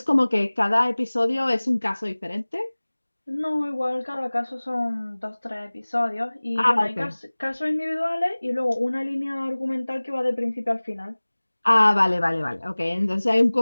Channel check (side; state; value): both; inverted; correlation -1.00